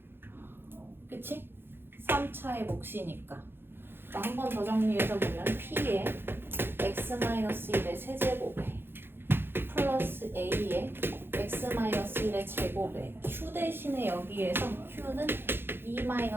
그치? 3차의 몫이니까. 한 번 더 정리해서 보면 p의 x-1의 세제곱에 플러스 a의 x-1의 제곱에 q 대신에 여기에서 q는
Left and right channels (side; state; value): left; late; 0.10 ms